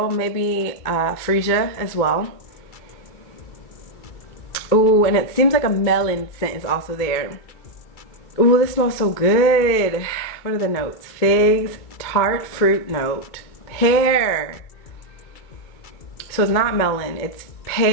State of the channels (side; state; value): right; late; 2.2 ms